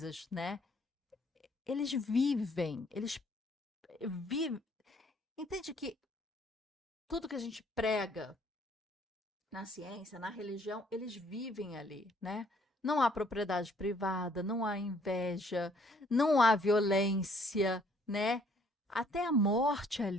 né? Eles vivem. Entende que tudo que a gente prega na ciência, na religião, eles vivem ali, né? Não há propriedade privada, não há inveja, não há violência, né? Até a morte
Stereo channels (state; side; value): normal; both; correlation 0.63